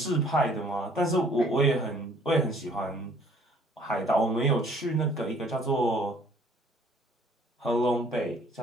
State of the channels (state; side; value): normal; both; correlation 0.58